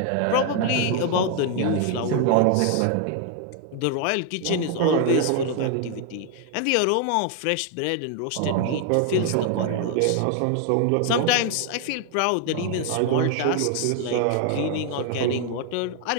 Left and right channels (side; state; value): both; different; correlation 0.00